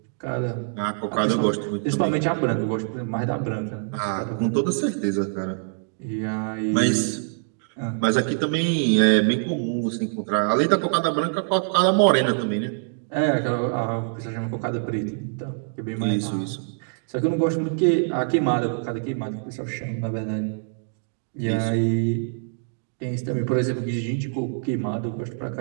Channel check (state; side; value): silent; left; digital silence